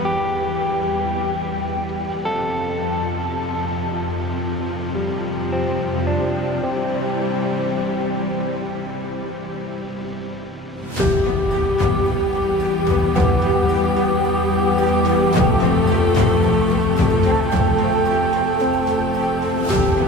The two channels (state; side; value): normal; both; correlation 0.46